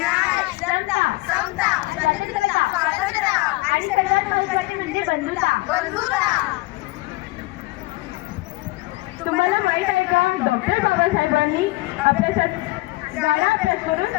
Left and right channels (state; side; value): quieter; right; 21.8 dB